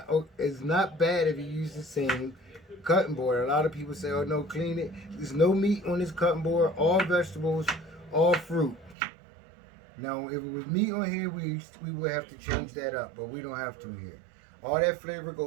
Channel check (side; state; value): left; drops out; at 9.0 s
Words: it's not bad if you use the same cutting board. A lot of people say, oh no, clean it. There's no meat on this cutting board, all vegetables, all fruit. Now, if it was meat on here, we would have to change that up, but we don't have to here. All that flavor